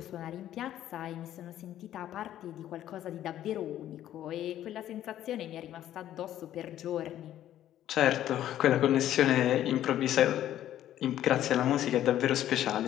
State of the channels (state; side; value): quieter; right; 12.1 dB